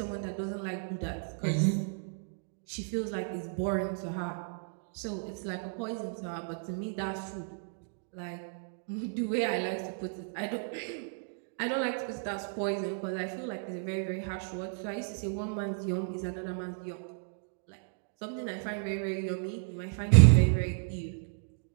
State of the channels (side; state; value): left; silent; digital silence